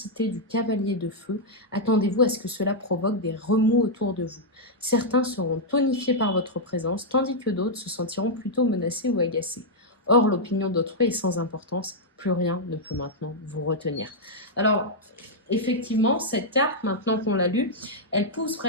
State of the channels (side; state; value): both; normal; correlation -0.05